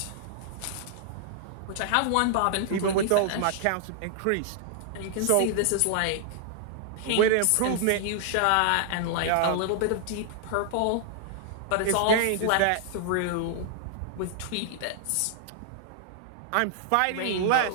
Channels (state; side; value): different; both; correlation -0.01